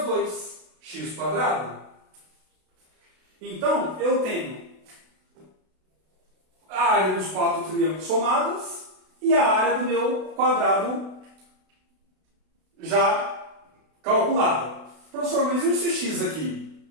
2, x quadrado. Então, eu tenho a área dos 4 triângulos somadas e a área do meu quadrado já calculada. Professor, mas e esse x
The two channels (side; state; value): left; late; 32 ms